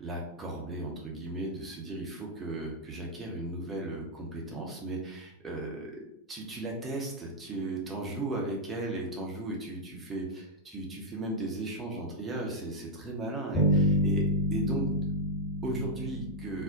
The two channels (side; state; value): both; normal; correlation -0.02